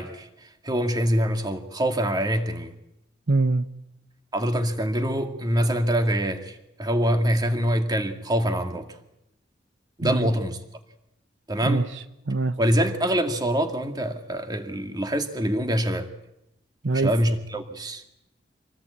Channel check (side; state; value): both; normal; correlation 0.70